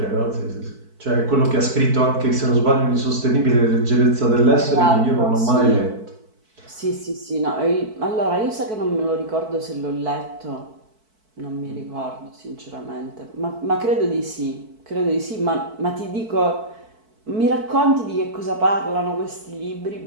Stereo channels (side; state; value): left; late; 4.6 ms